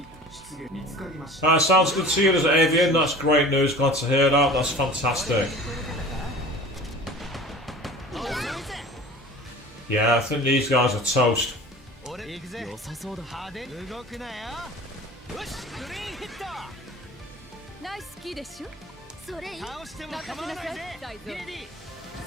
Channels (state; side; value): normal; both; correlation 0.41